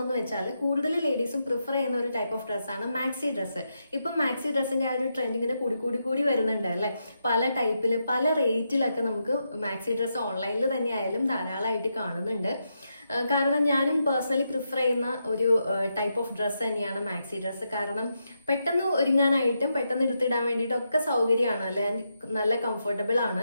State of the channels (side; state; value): both; inverted; correlation -0.84